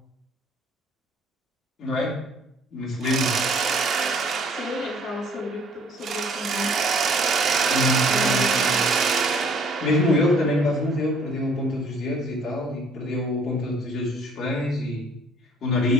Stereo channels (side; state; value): both; normal; correlation 0.57